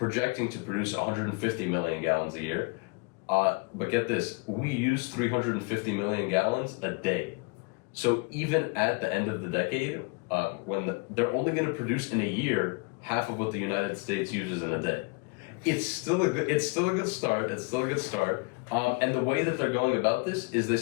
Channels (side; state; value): right; quieter; 29.6 dB